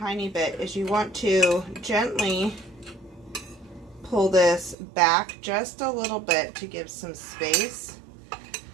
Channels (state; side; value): drops out; left; at 4.8 s